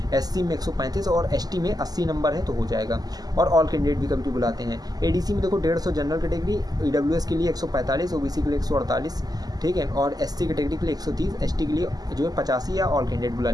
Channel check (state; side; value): late; left; 0.19 ms